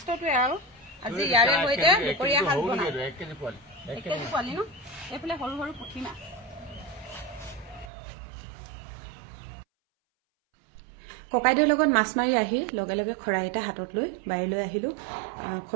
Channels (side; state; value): left; drops out; at 7.9 s